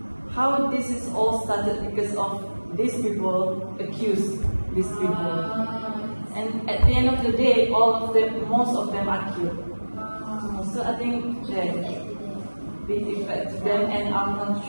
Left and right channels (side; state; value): both; inverted; correlation -1.00